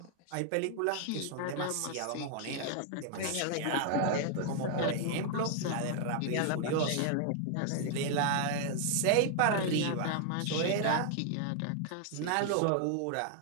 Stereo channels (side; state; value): both; different; correlation 0.00